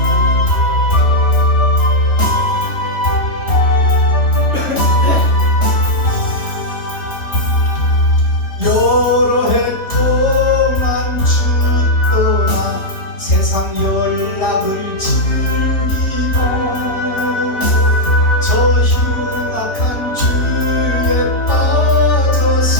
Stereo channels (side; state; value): right; late; 3.7 ms